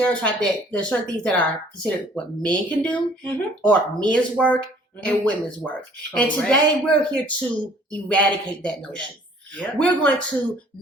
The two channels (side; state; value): both; normal; correlation 0.56